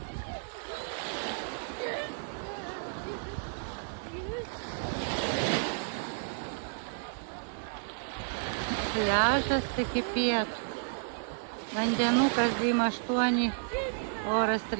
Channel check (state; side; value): silent; left; digital silence